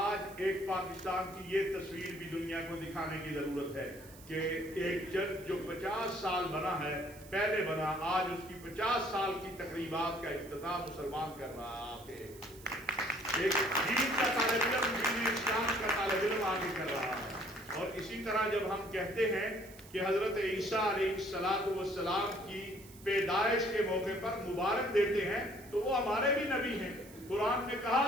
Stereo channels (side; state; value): right; noise; hiss, 21 dB below the sound